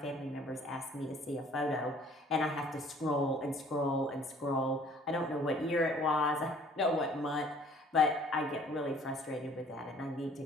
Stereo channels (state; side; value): normal; both; correlation 0.55